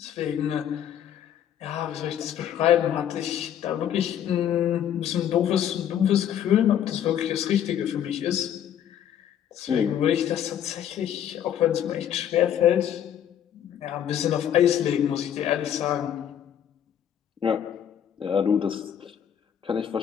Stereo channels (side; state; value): right; quieter; 9.8 dB